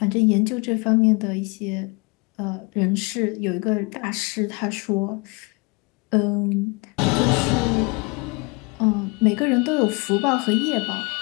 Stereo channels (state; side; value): quieter; right; 29.7 dB